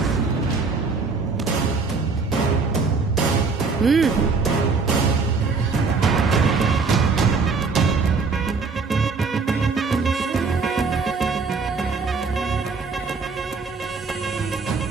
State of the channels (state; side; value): quieter; left; 4.6 dB